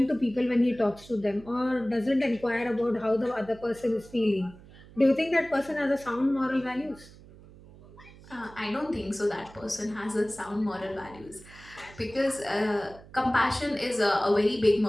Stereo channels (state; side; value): noise; right; hum, 21 dB below the sound